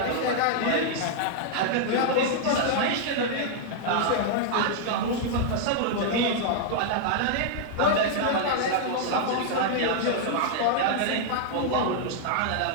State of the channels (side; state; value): both; different; correlation -0.01